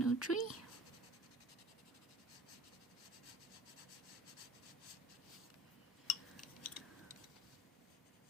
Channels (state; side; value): normal; both; correlation 0.42